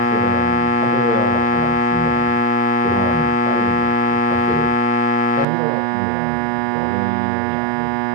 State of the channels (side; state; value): left; drops out; at 5.5 s